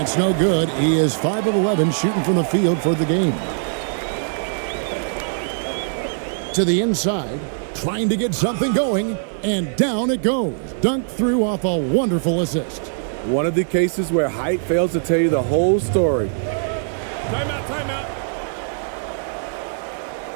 no good. He is 5 of 11 shooting from the field for the game. To the inside, trying to get something going, and down it goes. Dunked through off a wonderful assist. One of the cases where height fails to tell you the whole story. Timeout, timeout.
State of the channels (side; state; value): left; silent; 58 dB below the other